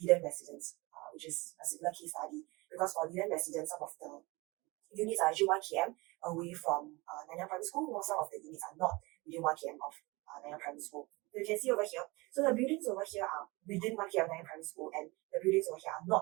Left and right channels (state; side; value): quieter; left; 24.1 dB